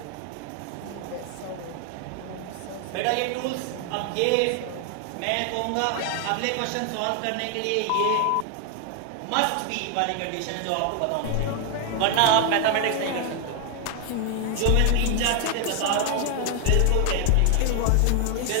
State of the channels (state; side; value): different; both; correlation 0.00